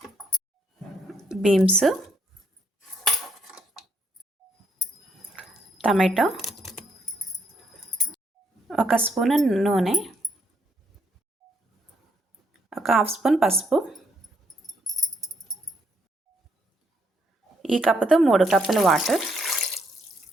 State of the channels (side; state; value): both; normal; correlation 0.72